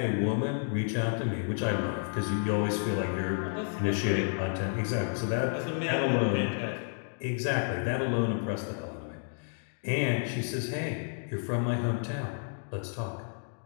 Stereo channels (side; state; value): right; silent; digital silence